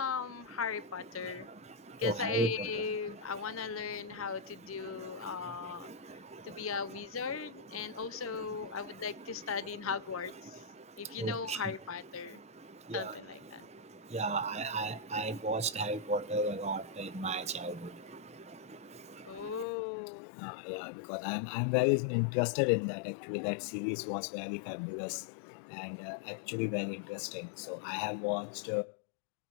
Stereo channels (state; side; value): drops out; right; at 19.7 s